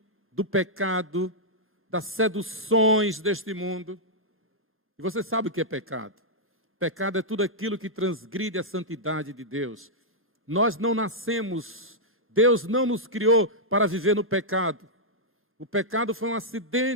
do pecado, das seduções deste mundo. E você sabe o que é pecado? Pecado é tudo aquilo que transgride a santidade de Deus. Nós não nascemos, Deus não nos criou para viver no pecado. O pecado foi um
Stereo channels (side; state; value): both; normal; correlation -0.09